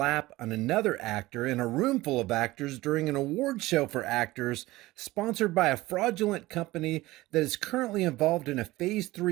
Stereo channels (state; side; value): quieter; left; 18.6 dB